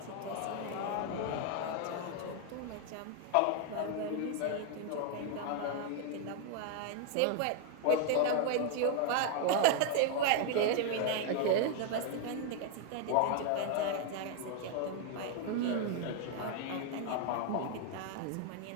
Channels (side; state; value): both; different; correlation 0.00